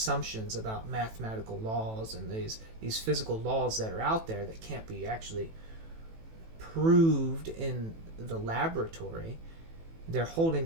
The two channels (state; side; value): late; left; 18 ms